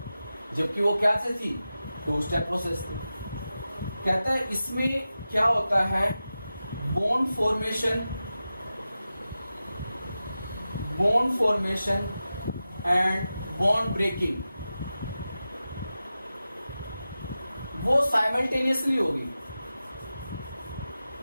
जबकि वो क्या से थी? 2 स्टेप प्रोसेस थी। कहता है इसमें क्या होता है? Bond formation and bond breaking वो साइमल्टेनियसली होगी,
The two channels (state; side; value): inverted; both; correlation -0.93